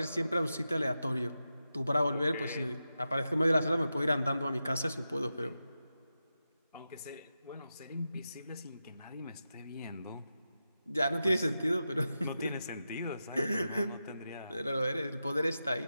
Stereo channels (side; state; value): both; inverted; correlation -0.90